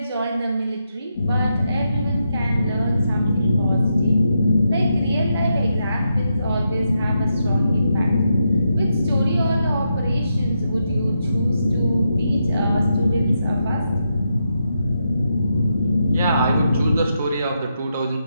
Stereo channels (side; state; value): both; inverted; correlation -0.83